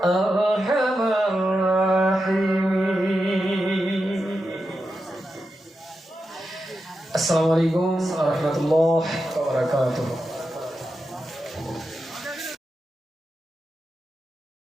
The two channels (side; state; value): both; normal; correlation 0.89